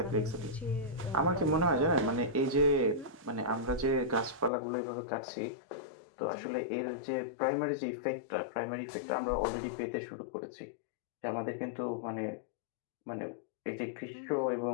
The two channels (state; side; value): drops out; right; at 4.5 s